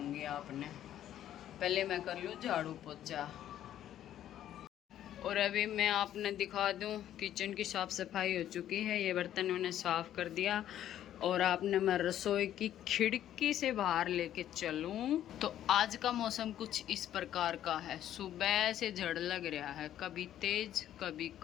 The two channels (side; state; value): right; quieter; 11.5 dB